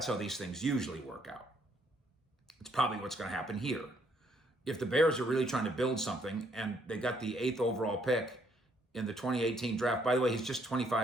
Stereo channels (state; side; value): normal; both; correlation 0.69